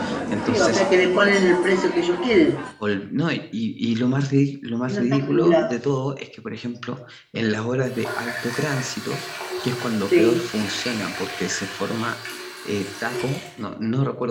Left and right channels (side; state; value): both; identical; correlation 1.00